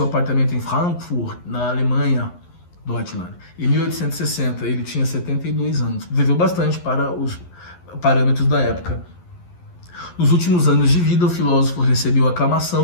apartamento em Frankfurt, na Alemanha, Deutschland. Em 1860, ele tinha 72 anos. Viveu bastante para os parâmetros da época. Nos últimos anos de vida, o filósofo recebeu a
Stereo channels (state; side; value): late; right; 11 ms